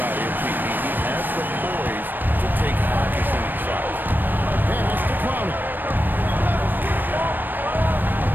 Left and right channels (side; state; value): left; late; 0.092 ms